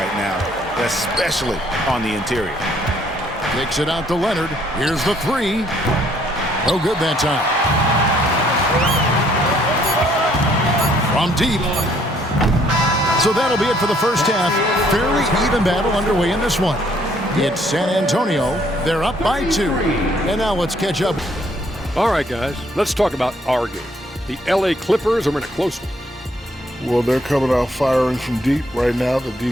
now, especially on the interior. Takes it out to Leonard. Here's the three. No good that time. From deep. So that'll be it for the first half. Fairly even battle underway in this one. It's San Antonio. They're up by 2. And now let's catch up. All right, guys, let's talk about our game. The LA Clippers are in a close one. Well, they're coming out firing from deep right now. The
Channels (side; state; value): both; normal; correlation 0.65